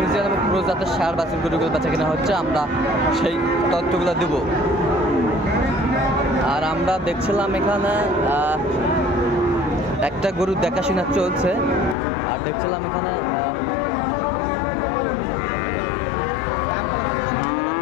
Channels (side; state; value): right; drops out; at 12.0 s